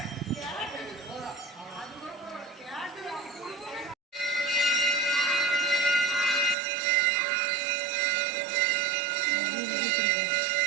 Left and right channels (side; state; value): left; drops out; at 6.6 s